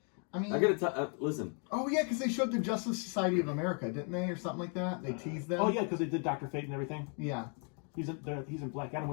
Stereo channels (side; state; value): right; quieter; 39.9 dB